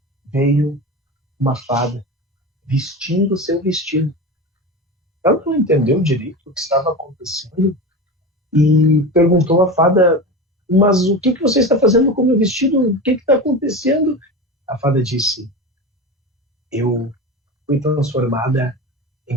veio uma fada vestindo o seu vestido. Ela não entendeu direito o que estava acontecendo e perguntou à fada: mas o que você está fazendo com o meu vestido? O que está acontecendo? A fada disse: eu fui transformada em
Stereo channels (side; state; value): both; normal; correlation 0.26